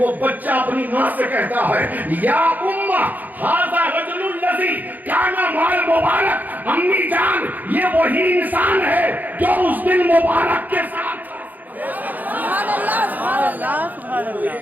بچہ اپنی ماں سے کہتا ہے, یا امہ ھذا رجل الذی کان مال مبارک. امی جان, یہ وہی انسان ہے جو اس دن مبارک کے ساتھ تھا.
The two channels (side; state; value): left; late; 0.083 ms